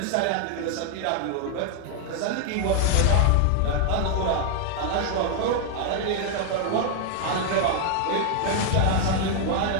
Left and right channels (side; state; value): both; different; correlation 0.00